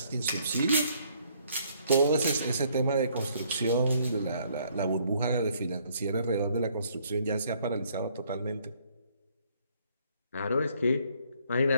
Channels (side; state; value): both; inverted; correlation -0.66